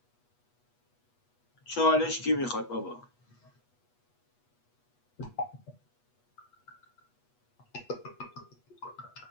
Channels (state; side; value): late; right; 8.2 ms